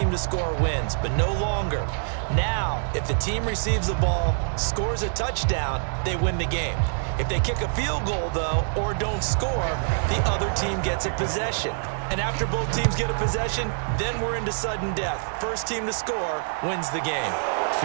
to score wins, but no longer. Now, if the team receives the ball, scores a touchdown, they win the game. If they kick a field goal, though, or don't score, the other team gets a possession. And after both teams get a possession, then we're into sudden death. First team to score wins the game.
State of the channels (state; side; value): silent; left; digital silence